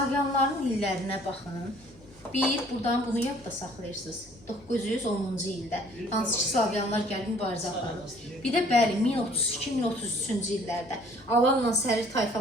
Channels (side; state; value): both; normal; correlation 0.56